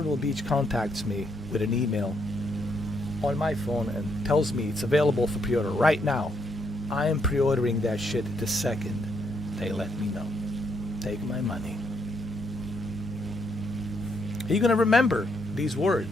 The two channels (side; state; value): both; normal; correlation 0.75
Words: Beach contacts me with an email on my phone and tells me it's available for pre-order right now, I am pre-ordering that shit the second they let me know. Take my money. Are you going to remember these